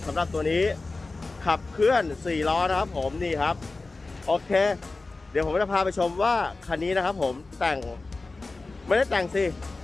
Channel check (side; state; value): right; quieter; 3.5 dB